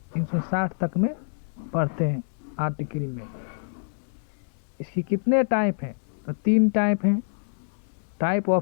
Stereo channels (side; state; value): right; silent; digital silence